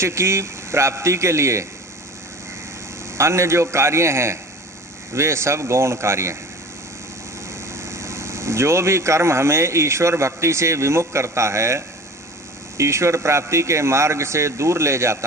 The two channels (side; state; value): both; normal; correlation 0.40